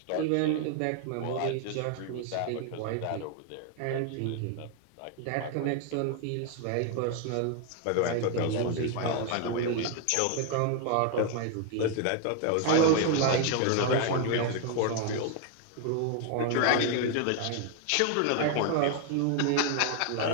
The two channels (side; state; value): both; different; correlation 0.00